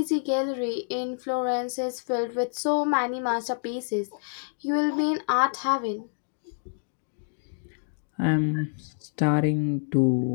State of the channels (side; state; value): right; silent; digital silence